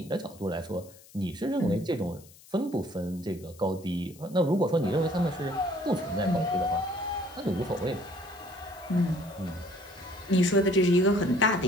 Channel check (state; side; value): noise; left; hiss, 23 dB below the sound